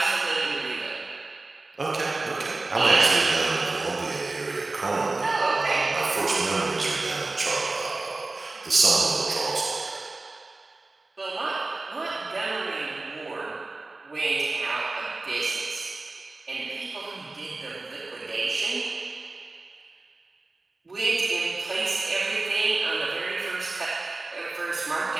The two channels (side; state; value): left; quieter; 3.3 dB